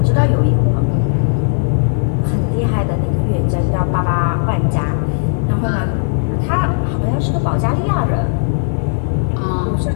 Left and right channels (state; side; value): silent; right; 69 dB below the other